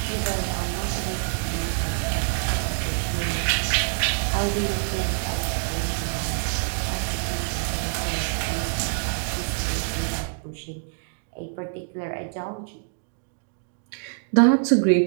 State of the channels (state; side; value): silent; left; digital silence